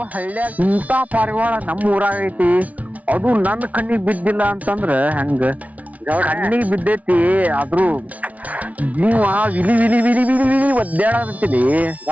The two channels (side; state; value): left; late; 0.069 ms